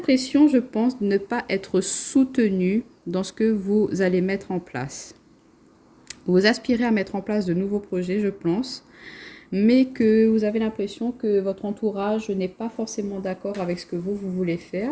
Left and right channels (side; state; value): both; identical; correlation 1.00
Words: je pense, de ne pas être soutenu dans ce que vous allez mettre en place. Vous aspirez à mettre en place de nouveaux projets, je pense, mais que vous avez l'impression que votre entourage n'est pas forcément d'accord avec ce que vous voulez